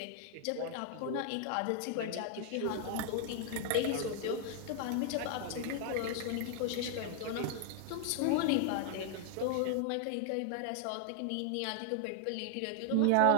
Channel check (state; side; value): different; both; correlation 0.00